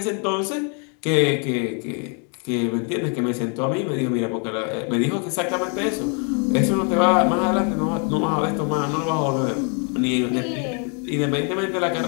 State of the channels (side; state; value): right; quieter; 38.9 dB